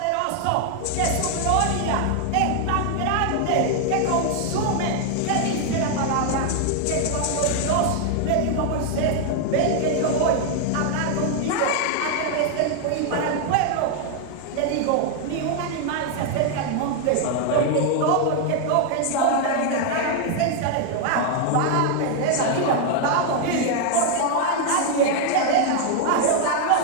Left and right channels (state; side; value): different; both; correlation 0.00